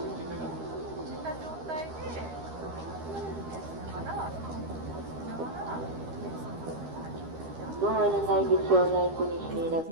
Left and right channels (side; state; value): left; late; 13 ms